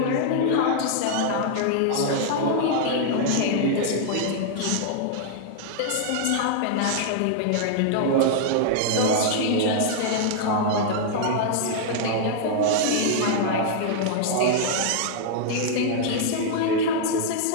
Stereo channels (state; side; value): different; both; correlation -0.01